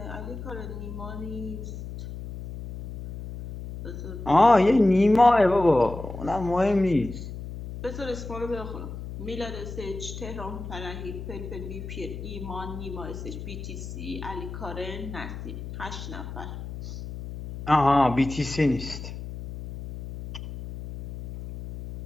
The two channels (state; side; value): noise; left; hum, 9 dB below the sound